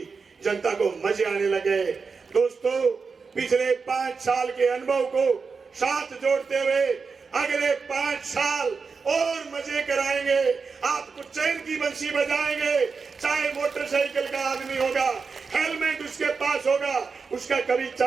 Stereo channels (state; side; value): quieter; left; 5.0 dB